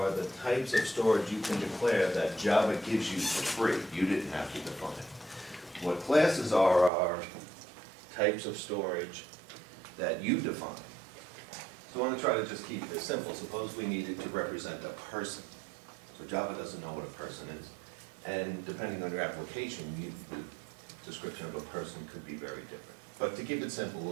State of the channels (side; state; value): left; drops out; at 6.9 s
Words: the types of storage you can declare that Java gives you for free. You didn't have to define it. What classes are types of storage that you define. So I want to try to just keep this simple. Suppose we needed to represent a person. So Java doesn't know what a person is. And depending on your application, the description of a person could be very different. But to keep it simple,